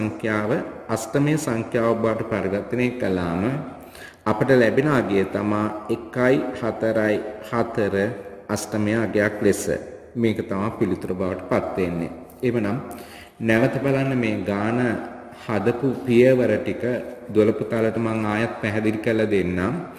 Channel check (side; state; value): both; identical; correlation 1.00